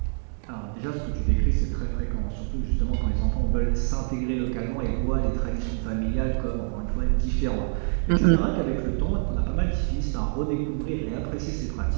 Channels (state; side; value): silent; left; 61 dB below the other